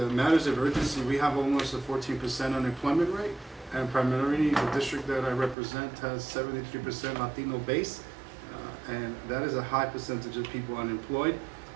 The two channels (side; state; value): left; drops out; at 5.6 s